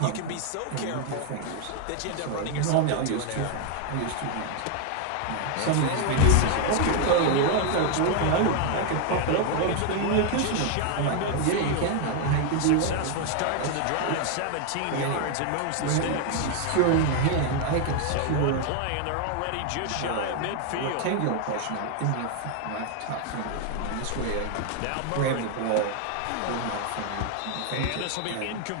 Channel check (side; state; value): both; different; correlation 0.01